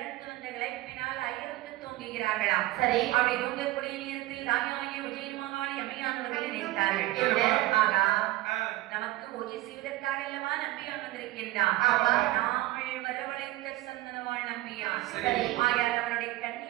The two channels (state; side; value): quieter; left; 17.4 dB